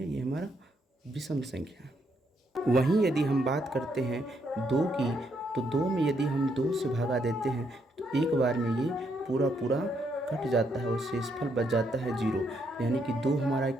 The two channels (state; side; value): normal; both; correlation 0.75